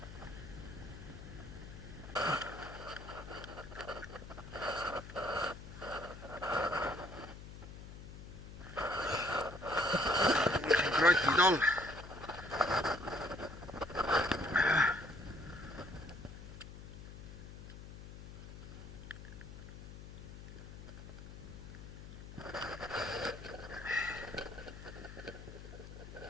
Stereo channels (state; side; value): noise; left; hum, 13 dB below the sound